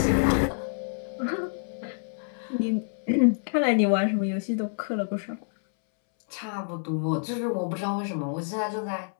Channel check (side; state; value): right; silent; 60 dB below the other